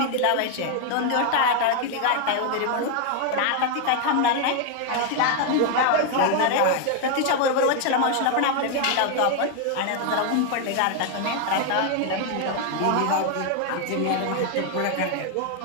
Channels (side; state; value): both; different; correlation 0.01